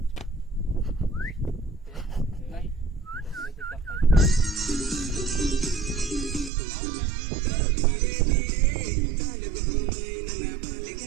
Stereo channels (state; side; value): drops out; left; at 6.5 s